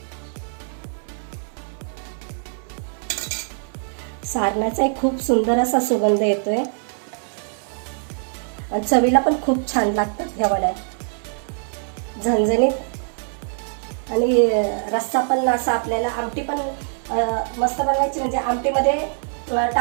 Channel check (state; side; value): silent; left; 63 dB below the other